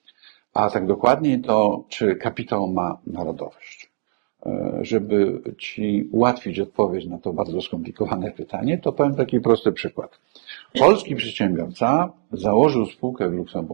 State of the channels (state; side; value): silent; left; digital silence